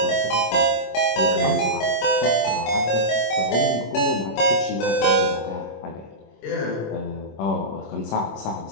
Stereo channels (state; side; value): late; right; 25 ms